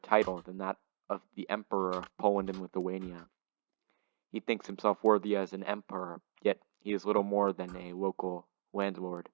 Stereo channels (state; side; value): silent; left; digital silence